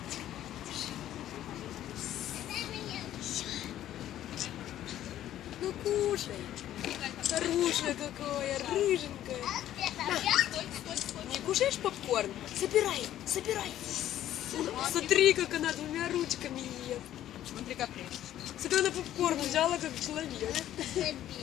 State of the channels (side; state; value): right; quieter; 12.4 dB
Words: Держи. Ну кушай. Хорошая какая, рыженькая. Не кушаешь попкорн? Собирай, собирай. Смотри, как она двумя ручками ест. Смотри, как ты. Смотри, она попкорн взяла, как человек.